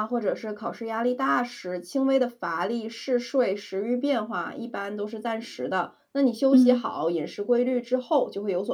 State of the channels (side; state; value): both; identical; correlation 1.00